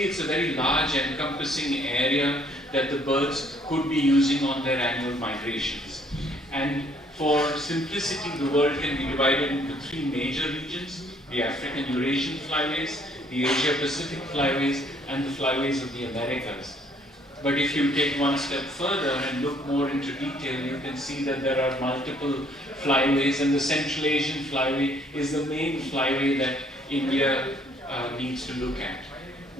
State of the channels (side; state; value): both; normal; correlation 0.63